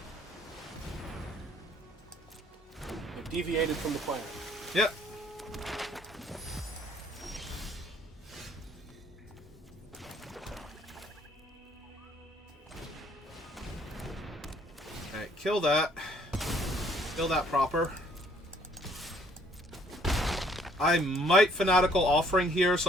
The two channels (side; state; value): both; normal; correlation 0.63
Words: They've deviated from the plan. Yep. Alright, kill that. Kill that proper. I might Fanatical Offering here